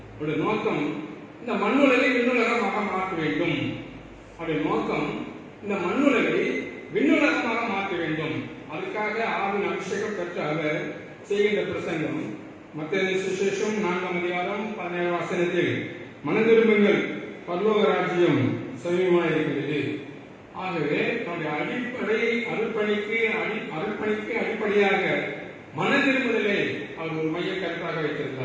அவருடைய நோக்கம் இந்த மண்ணுலகை விண்ணுலகமாக மாற்ற வேண்டும். அவருடைய நோக்கம் இந்த மண்ணுலகை விண்ணுலகமாக மாற்ற வேண்டும். அதுக்காக ஆவின் அபிஷேகம் பெற்ற அவர் செய்கின்ற பிரசங்கம் மத்தேயு சுவிசேஷம் 4ஆம் அதிகாரம் 17ஆம் வசனத்தில் மனதிரும்புங்கள், பரலோக ராஜ்யம் சமீபமாக இருக்கிறது. ஆகவே நம்முடைய அடிப்படை அருட்பணிக்கு அடிப்படையாக மனதிரும்புதலை அவர் ஒரு மைய கருத்தாக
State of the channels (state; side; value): identical; both; correlation 1.00